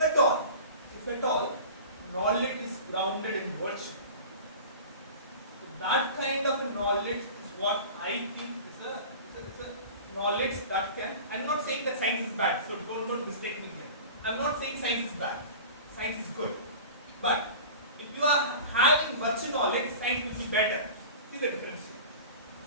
all, knowledge is grounded in virtue. So that kind of a knowledge is what I think is a knowledge that can. I'm not saying that science is bad, so don't mistake me here. I'm not saying science is bad. Science is good. But if you are having virtue knowledge, science will be better. See the difference here.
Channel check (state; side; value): inverted; both; correlation -0.37